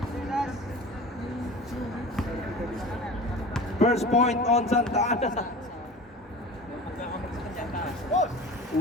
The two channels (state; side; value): normal; both; correlation 0.37